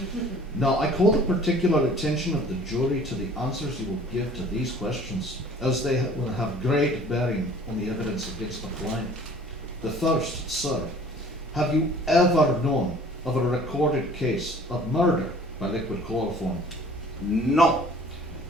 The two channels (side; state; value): both; normal; correlation 0.50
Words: Now, I call the particular attention of the jury to the answers you will give to these questions, as they will have great bearing on the evidence against the client. The first, sir, have you ever known of a recorded case of murder by liquid chloroform? No.